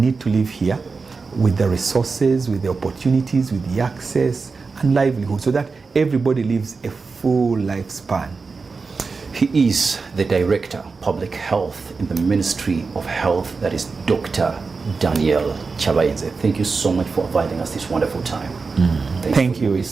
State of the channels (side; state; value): left; quieter; 4.5 dB